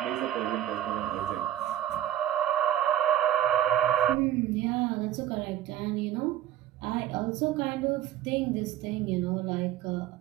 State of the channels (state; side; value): quieter; left; 12.1 dB